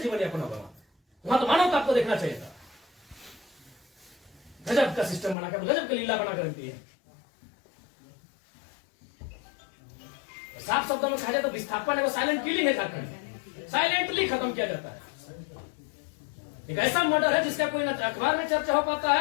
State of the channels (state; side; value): drops out; right; at 5.4 s